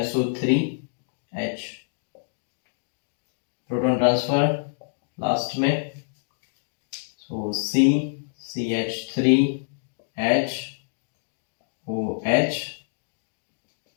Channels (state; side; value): silent; right; digital silence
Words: SO3H, proton transfer last में, so C CH3H OH,